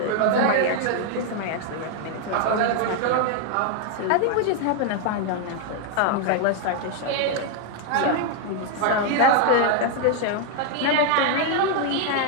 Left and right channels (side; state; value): both; different; correlation 0.00